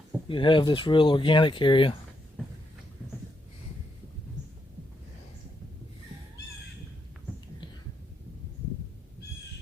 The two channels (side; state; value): both; normal; correlation 0.80